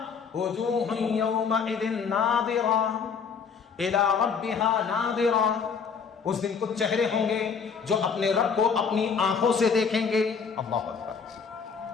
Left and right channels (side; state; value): right; quieter; 6.0 dB